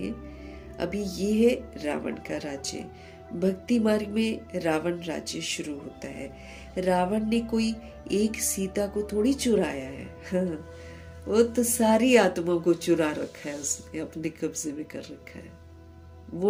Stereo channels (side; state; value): both; identical; correlation 1.00